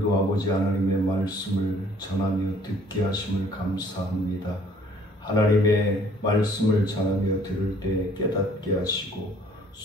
아버지 하나님의 말씀을 전하며 듣게 하심을 감사합니다. 하나님의 말씀을 전하며 들을 때 깨닫게 하시고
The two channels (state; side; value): normal; both; correlation 0.58